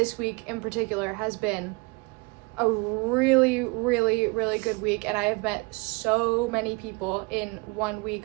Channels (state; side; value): quieter; left; 28.0 dB